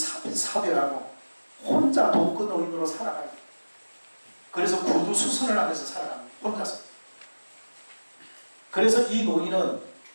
혼자 독거 노인으로 살아가요. 그래서 구두수선을 하면서 살아갑니다. 혼자서. 그래서 이 노인은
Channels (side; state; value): both; inverted; correlation -1.00